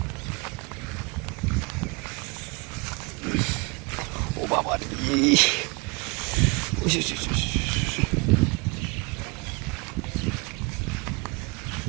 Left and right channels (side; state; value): left; quieter; 29.0 dB